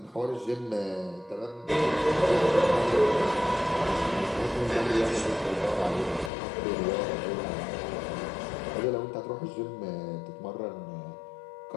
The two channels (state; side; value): drops out; right; at 6.3 s